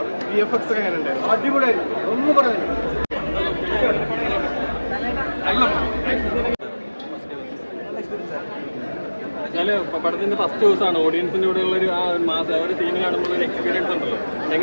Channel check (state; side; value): inverted; both; correlation -1.00